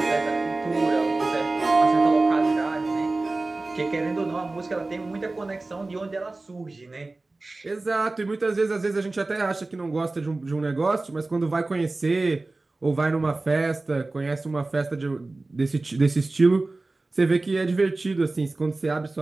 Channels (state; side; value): quieter; left; 3.2 dB